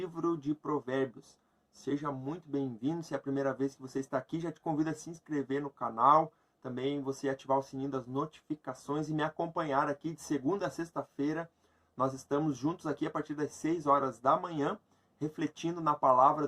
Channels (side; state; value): both; identical; correlation 1.00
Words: de Provérbios. Seja muito bem-vindo. Se é a primeira vez que você está aqui, já te convido a se inscrever no canal. Também você ativar o sininho das notificações e me acompanhar aqui de segunda a sexta-feira. Nós estamos juntos aqui a partir das 6 horas da manhã, refletindo na palavra